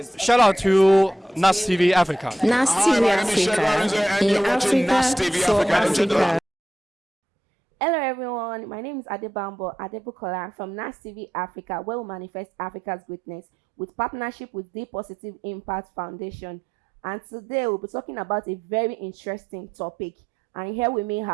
Shout out to Nastv Africa. Nastv Africa, in Africa for Africa. Hello everyone, my name is Adebambo Adebukola from Nastv Africa, where we manifest Africa's greatness with partnership with the Positive Impact Foundation. And today we'll be talking about a very interesting topic. And here with me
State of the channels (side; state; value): both; normal; correlation 0.87